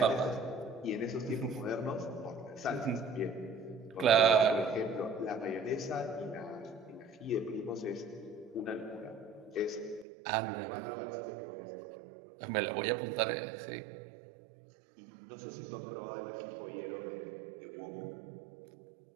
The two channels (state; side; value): drops out; left; at 10.1 s